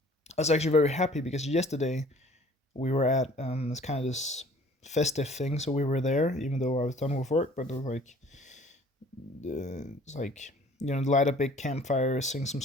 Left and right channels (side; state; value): both; normal; correlation 0.52